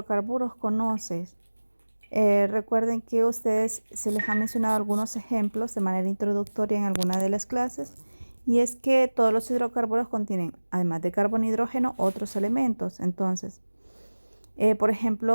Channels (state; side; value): inverted; both; correlation -1.00